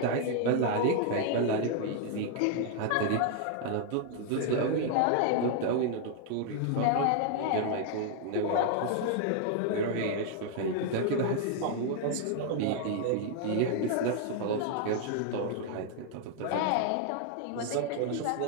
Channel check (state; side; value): different; both; correlation 0.00